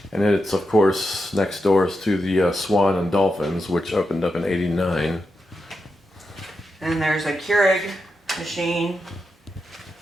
And it's, of course, next doors to the Swan and Dolphins, which opened up in '89. And there's a Keurig machine,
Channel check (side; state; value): both; normal; correlation 0.87